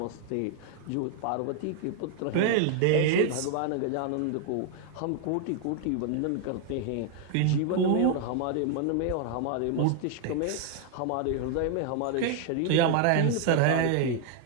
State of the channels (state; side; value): different; both; correlation 0.00